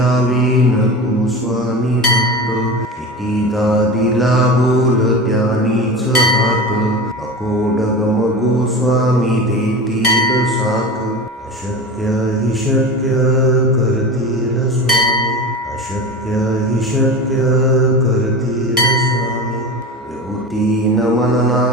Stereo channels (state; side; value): normal; both; correlation 0.29